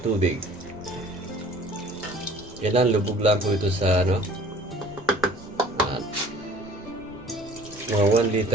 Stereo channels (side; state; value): right; noise; rumble, 21 dB below the sound